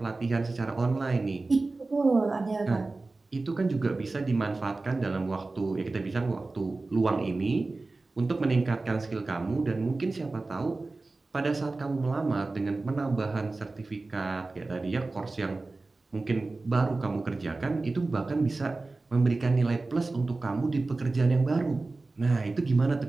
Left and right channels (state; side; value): quieter; left; 3.4 dB